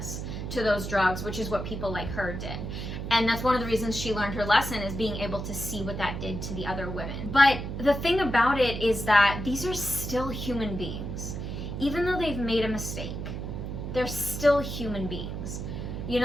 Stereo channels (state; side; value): noise; right; hum, 5 dB below the sound